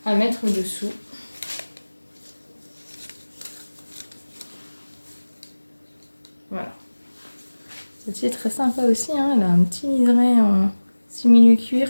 à mettre dessous. Voilà. Celle-ci est très sympa aussi, hein. Elle a un petit liseré en simili-cuir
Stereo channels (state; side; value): inverted; both; correlation -1.00